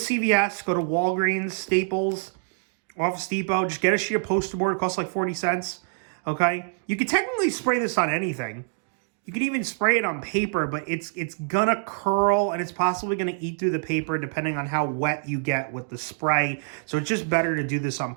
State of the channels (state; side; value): silent; left; digital silence